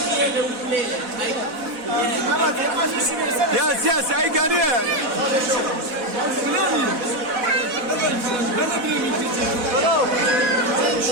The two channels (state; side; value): late; left; 4.1 ms